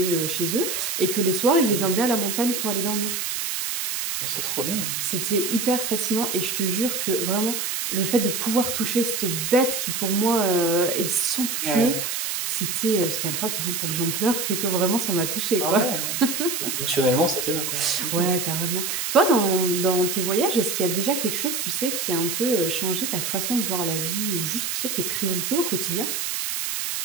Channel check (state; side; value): noise; right; hiss, 2 dB below the sound